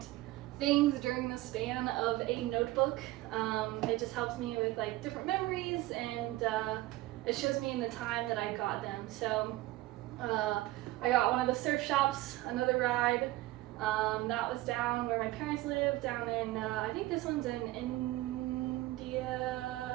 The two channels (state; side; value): quieter; left; 17.7 dB